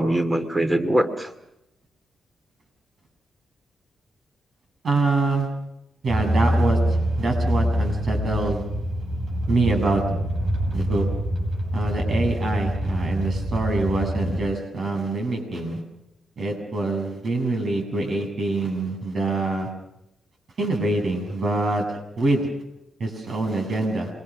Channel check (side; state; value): both; normal; correlation 0.85